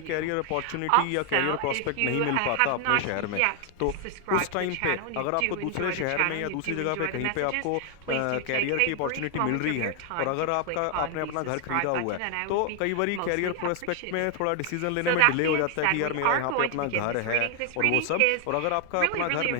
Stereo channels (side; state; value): both; different; correlation 0.00